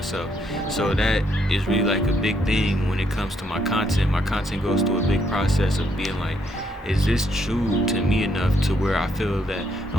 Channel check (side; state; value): both; normal; correlation 0.73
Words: So that is really like a big thing when it comes to my content. My content goes through a big process of being like, is this true to me enough to where I feel that